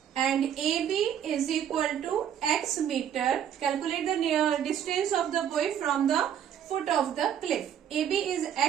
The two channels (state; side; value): quieter; left; 9.4 dB